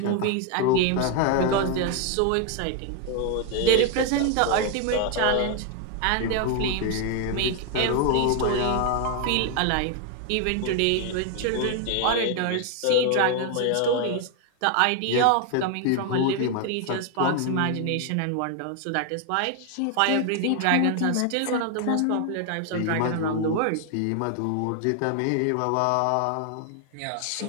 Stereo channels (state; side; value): different; both; correlation 0.00